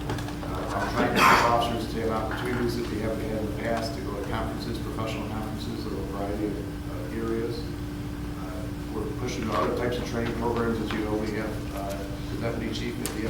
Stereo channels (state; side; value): identical; both; correlation 1.00